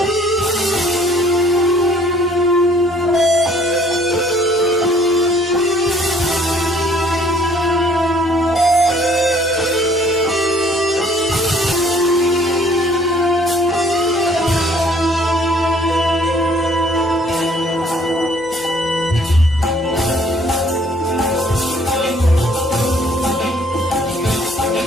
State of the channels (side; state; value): both; normal; correlation 0.59